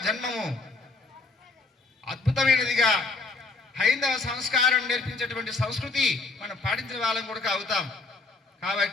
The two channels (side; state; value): right; quieter; 3.7 dB